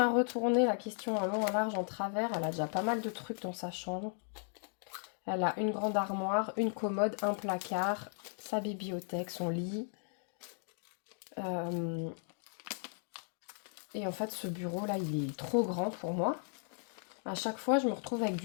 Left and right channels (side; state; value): right; silent; 54 dB below the other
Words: retourné la question en long, en large, en travers. Elle a déjà pas mal de trucs dans sa chambre. Elle a une grande armoire, une commode, un placard, sa bibliothèque, son lit. Et en fait, ce bureau-là, il est trop grand pour moi. À chaque fois, je me retrouve avec